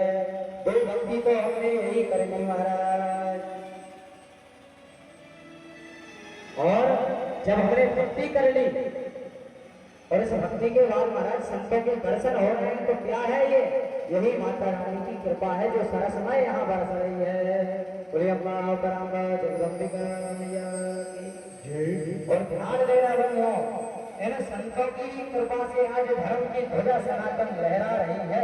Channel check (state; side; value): identical; both; correlation 1.00